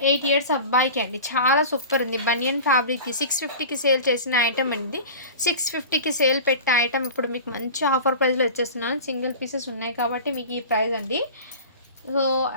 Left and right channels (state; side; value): inverted; both; correlation -0.35